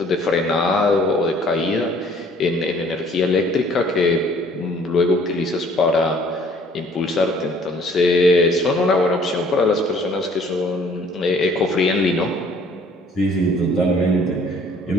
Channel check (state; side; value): normal; both; correlation 0.57